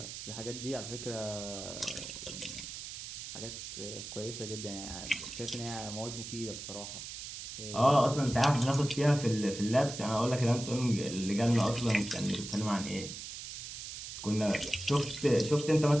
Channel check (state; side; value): noise; right; hiss, 9 dB below the sound